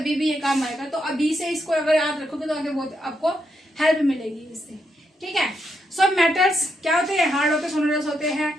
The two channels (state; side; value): normal; both; correlation 0.80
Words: भी ये काम आएगा। तो अभी से इसको अगर याद रखोगे तो आगे बहुत आपको हेल्प मिलेगी इससे, ठीक है। सो मेटल्स क्या होते हैं, हार्ड होते हैं, सोनरस होते हैं,